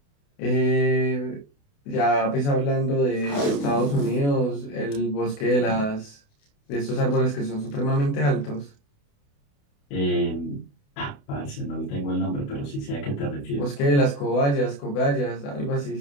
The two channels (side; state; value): right; late; 28 ms